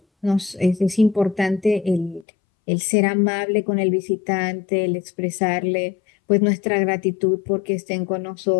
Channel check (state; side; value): drops out; right; at 2.2 s